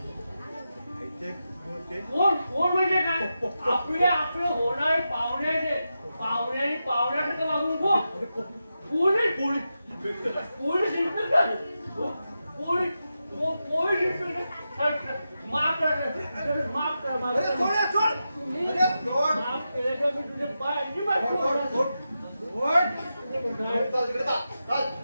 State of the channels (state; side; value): inverted; both; correlation -0.89